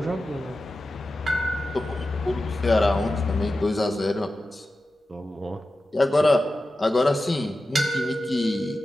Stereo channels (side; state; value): both; normal; correlation 0.93